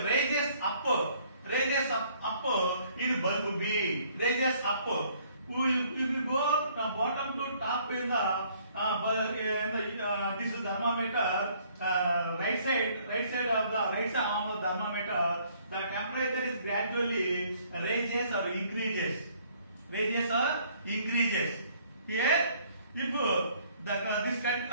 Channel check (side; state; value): both; inverted; correlation -0.62